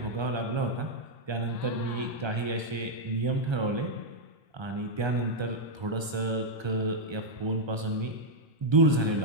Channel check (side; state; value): left; late; 1.3 ms